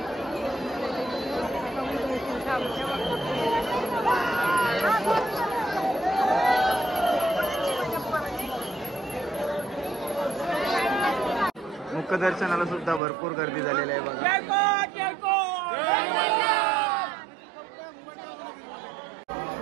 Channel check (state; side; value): drops out; left; at 13.0 s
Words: मुखदर्शनाला सुद्धा भरपूर गर्दी झालेली आहे बघा.